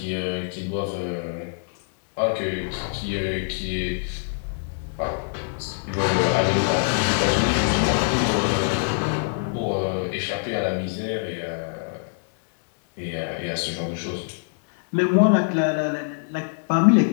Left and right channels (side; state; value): right; silent; digital silence